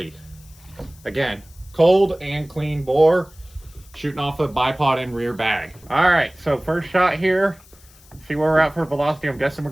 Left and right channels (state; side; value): noise; left; hiss, 26 dB below the sound